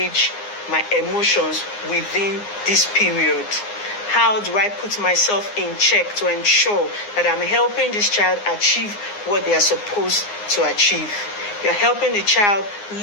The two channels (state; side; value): late; right; 9.7 ms